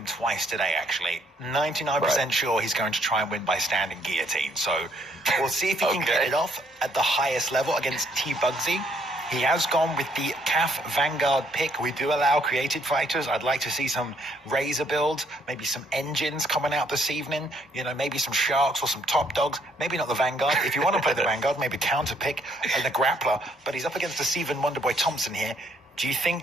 twice today, actually. 99% sure he's going to try and win by standing guillotine. So we'll see if he can get it off at the highest level against Bugzy. He has gone with the CAF Vanguard pick. We do allow creative fighters. I'd like to see some Razor builds, maybe some engines coming out this evening. You know, maybe some Sharks or some Top Dogs. Maybe not the Vanguard. If you want to play the Vanguard, maybe counter pick and the Grappler. But he's up against the Stephen Wonderboy Thompson here. Do you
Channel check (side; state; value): both; normal; correlation 0.68